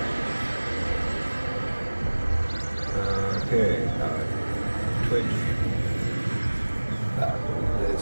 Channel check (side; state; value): both; inverted; correlation -1.00